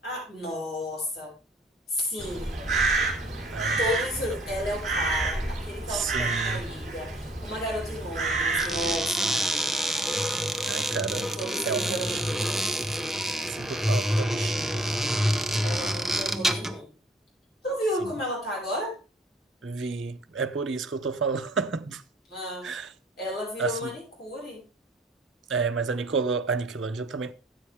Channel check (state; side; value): normal; both; correlation 0.58